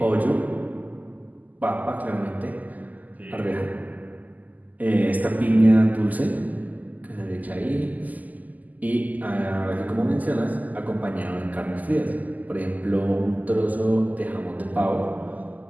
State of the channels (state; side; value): late; left; 0.080 ms